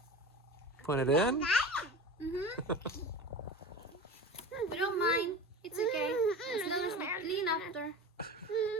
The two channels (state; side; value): normal; both; correlation 0.33